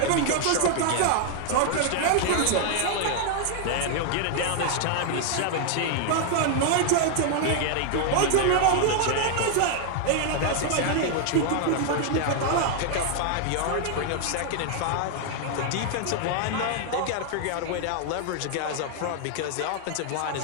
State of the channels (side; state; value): both; different; correlation 0.00